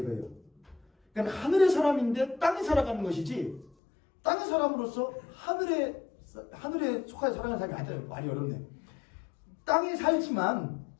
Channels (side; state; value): right; drops out; at 3.7 s